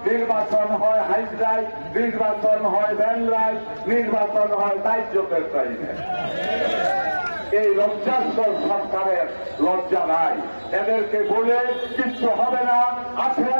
নির্বাচন হয় হাইড্রাই, নির্বাচন হয় ব্যানরাই, নির্বাচন হয় দায়িত্বের টাইমে। এই লজ্জাস্কর সরকারের লজ্জা নাই, এদেরকে বলে কিচ্ছু হবে না।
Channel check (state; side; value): inverted; both; correlation -1.00